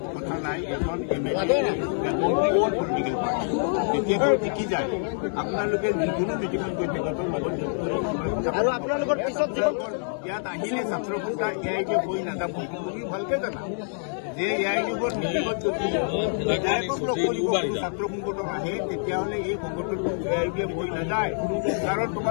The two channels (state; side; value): silent; right; digital silence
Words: কথা নাই, এখন MLA পলিটিকেল পাৰ্টি কেতিয়াবা টিকি যায়। আপোনালোকে যিকোনো মিটিঙত গৈ তেখেতৰ লগত আৰু আপোনালোকৰ পিছত ইয়াত আহিলে ছাত্ৰ সন্থা এয়াইকে হৈ নাযাব। তুমি ভালকে জানা যে এয়াইযুগৰ মিটিঙত যদি বিধায়কক লগ কৰিব ছাত্ৰ সংগঠন আহে, তেতিয়াহ'লে এই সংগঠনটো এয়াইকে হৈ নাযায়। কাৰণ